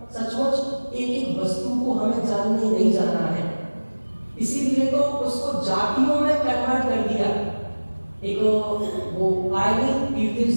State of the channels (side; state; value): both; inverted; correlation -1.00